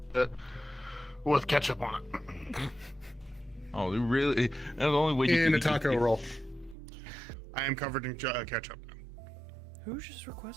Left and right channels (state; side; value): drops out; left; at 6.8 s